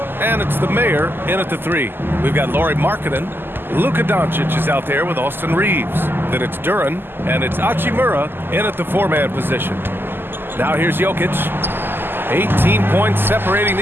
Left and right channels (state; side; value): late; left; 0.098 ms